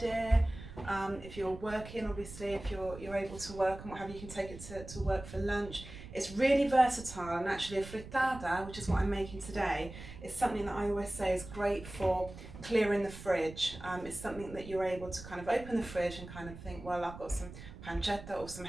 If you're working, obviously, if you're able to work and what have you, you can take it to work for lunch. It's really versatile, and actually a frittata, which is what I'm making today, is something that I always say is great for clearing the fridge. It's something that you're able to kind of open the fridge and kind of think, well, I've got some pancetta or some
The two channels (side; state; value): right; noise; rumble, 14 dB below the sound